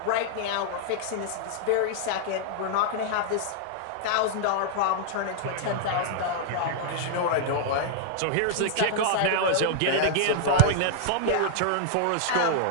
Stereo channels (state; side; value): different; both; correlation -0.01